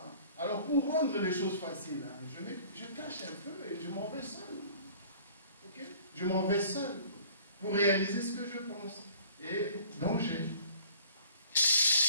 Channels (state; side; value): inverted; both; correlation -0.50